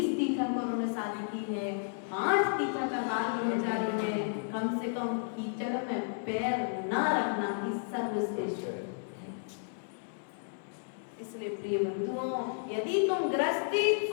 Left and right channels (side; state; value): right; silent; 56 dB below the other